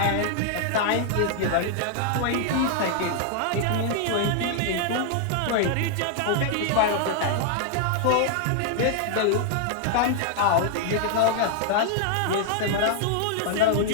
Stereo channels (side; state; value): both; different; correlation -0.01